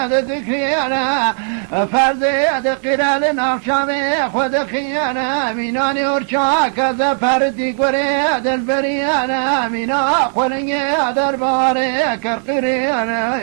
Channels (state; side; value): silent; left; digital silence